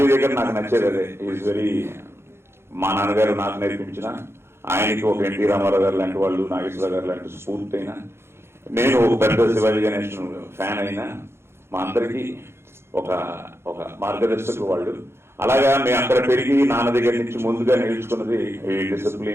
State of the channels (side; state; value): left; late; 0.12 ms